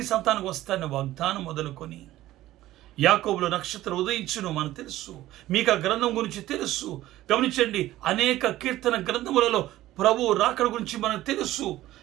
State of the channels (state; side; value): quieter; left; 15.2 dB